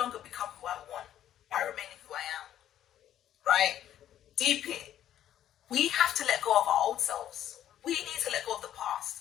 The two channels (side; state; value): right; quieter; 11.4 dB